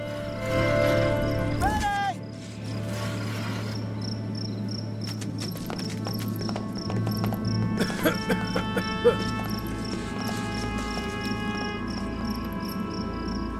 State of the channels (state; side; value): identical; both; correlation 1.00